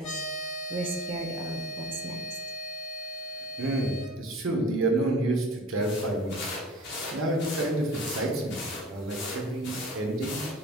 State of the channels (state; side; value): normal; both; correlation 0.42